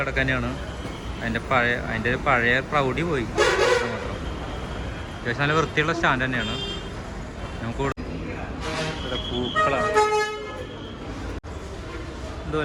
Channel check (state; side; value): identical; both; correlation 1.00